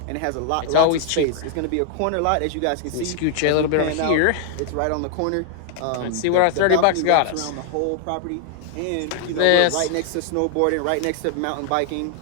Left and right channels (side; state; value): both; different; correlation 0.00